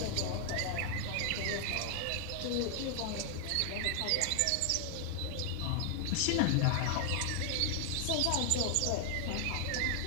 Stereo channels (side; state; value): both; different; correlation 0.00